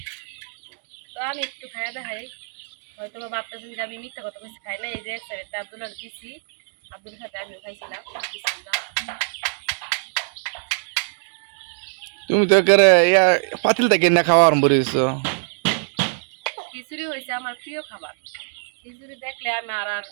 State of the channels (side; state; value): left; silent; digital silence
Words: তো আমি একটু খাইয়া দেখাই, হয়তো বা ভাবতেছেন যে আমি মিথ্যা কথা বেশি খাই না। এই যে একটা আব্দুল্লাহ দিছি, আব্দুল সাথে আমিও খাইছিলাম। তুমি তো একেবারে ইয়া পাতিল থেকে না খাওয়া আরম্ভ করেছো। খিচুড়ি হয়েছে আমার প্রিয় খাবার। খিচুড়ি দেখলে আমি আর